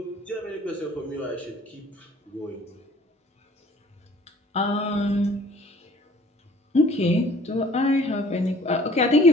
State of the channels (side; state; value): both; normal; correlation 0.53